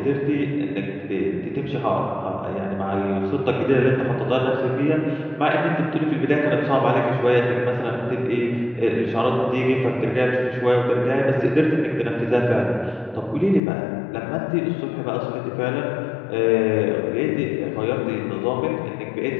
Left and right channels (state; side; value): drops out; right; at 13.6 s